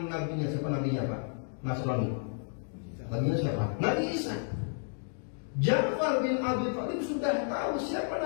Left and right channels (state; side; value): silent; right; 57 dB below the other